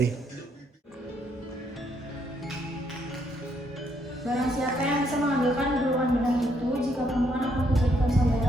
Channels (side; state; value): both; normal; correlation 0.73